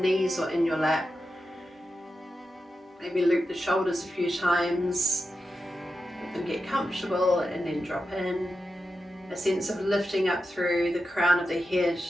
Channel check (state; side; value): normal; both; correlation 0.90